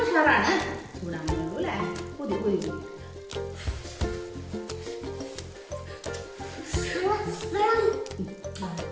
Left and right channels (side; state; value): both; identical; correlation 1.00